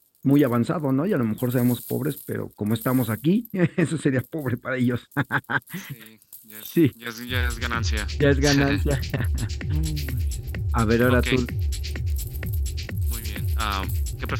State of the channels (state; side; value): identical; both; correlation 1.00